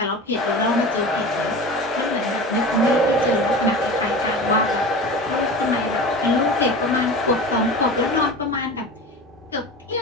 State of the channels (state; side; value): normal; both; correlation 0.33